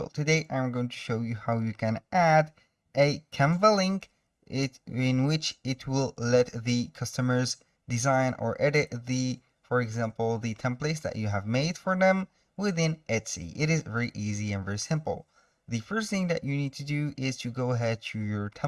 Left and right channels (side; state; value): both; identical; correlation 1.00